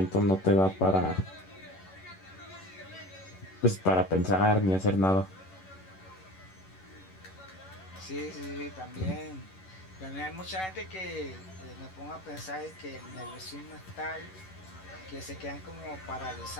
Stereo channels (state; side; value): late; right; 11 ms